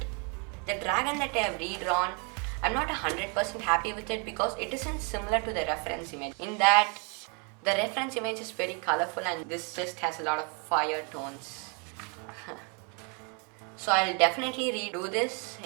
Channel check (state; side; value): quieter; left; 36.1 dB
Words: The dragon that I have redrawn, I'm not 100% happy with it because it isn't similar to the reference image. In that, the reference image is very colorful and this just has a lot of fire tones. So I'll definitely redo this